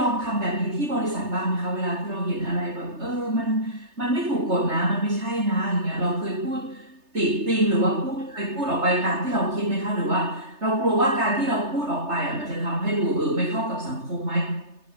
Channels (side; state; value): left; late; 3.3 ms